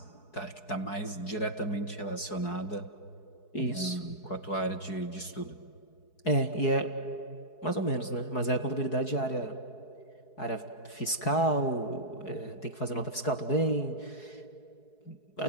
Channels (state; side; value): late; right; 4.7 ms